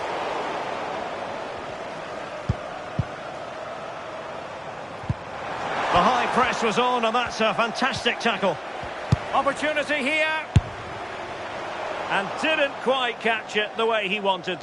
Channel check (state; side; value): identical; both; correlation 1.00